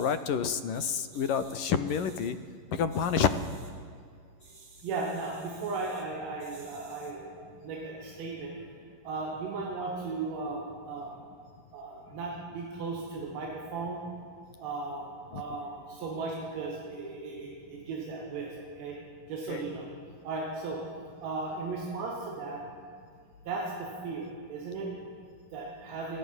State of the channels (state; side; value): late; right; 11 ms